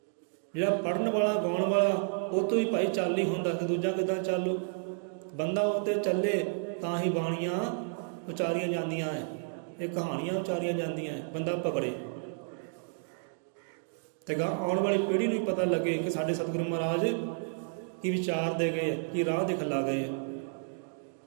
ਜਿਹੜਾ ਪੜ੍ਹਨ ਵਾਲਾ, ਗਾਉਣ ਵਾਲਾ, ਉਹ ਤੋਂ ਹੀ ਭਾਈ ਚੱਲ ਨਹੀਂ ਹੁੰਦਾ ਕਿ ਦੂਜਾ ਕਿੱਦਾਂ ਚੱਲੂ। ਬੰਦਾ ਉਹ 'ਤੇ ਚੱਲੇ ਤਾਂ ਹੀ ਬਾਣੀਆਂ ਉਚਾਰੀਆਂ ਜਾਂਦੀਆਂ ਹੈ, ਇਹ ਕਹਾਣੀਆਂ ਉਚਾਰੀਆਂ ਜਾਂਦੀਆਂ ਹੈ। ਬੰਦਾ ਪਕੜੇ ਤੇ ਗਾ ਆਉਣ ਵਾਲੀ ਪੀੜ੍ਹੀ ਨੂੰ ਵੀ ਪਤਾ ਲੱਗੇ ਕਿ ਸਾਡੇ ਸਤਿਗੁਰੂ ਮਹਾਰਾਜ ਕੀ ਵਿਚਾਰ ਦੇ ਗਏ, ਕੀ ਰਾਹ ਦਿਖਲਾ ਗਏ।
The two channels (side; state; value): left; silent; digital silence